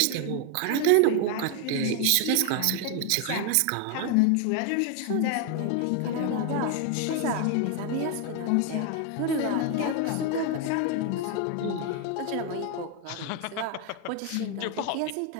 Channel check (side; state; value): both; different; correlation 0.01